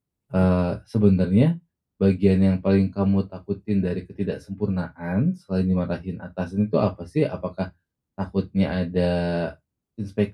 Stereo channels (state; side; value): identical; both; correlation 1.00